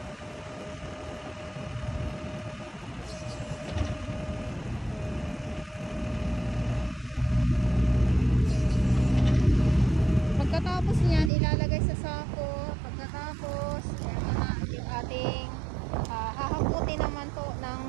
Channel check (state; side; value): drops out; left; at 11.3 s